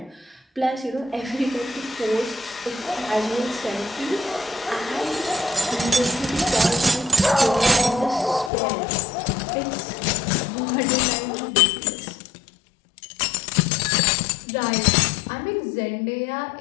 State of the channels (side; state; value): right; drops out; at 8.5 s